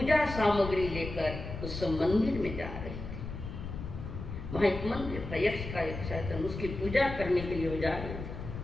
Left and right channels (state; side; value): noise; left; rumble, 8 dB below the sound